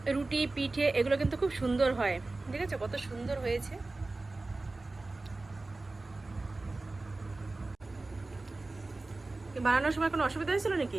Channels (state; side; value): quieter; left; 3.2 dB